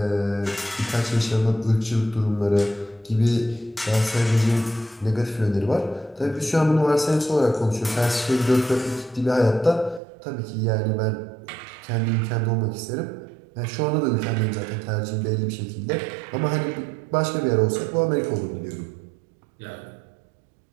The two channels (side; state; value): left; drops out; at 10.0 s